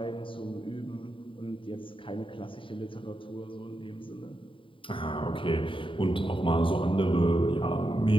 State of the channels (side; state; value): right; late; 0.25 ms